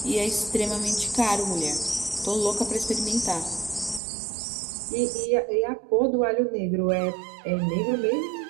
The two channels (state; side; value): drops out; left; at 4.0 s